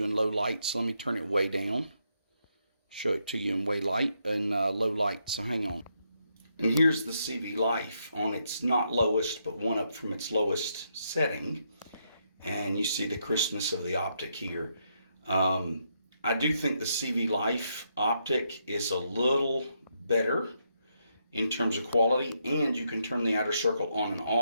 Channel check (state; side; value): inverted; both; correlation -0.78